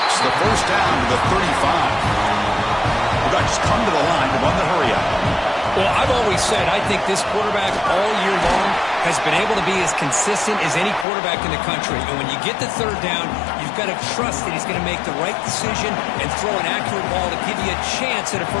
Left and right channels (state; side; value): drops out; right; at 11.1 s